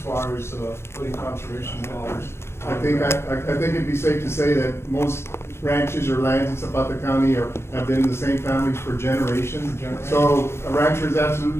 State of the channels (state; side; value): late; right; 0.12 ms